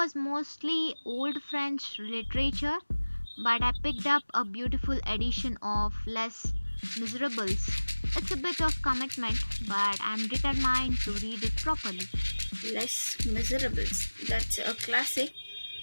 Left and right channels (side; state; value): both; inverted; correlation -1.00